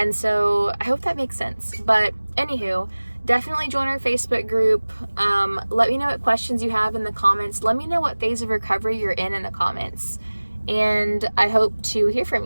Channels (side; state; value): both; inverted; correlation -1.00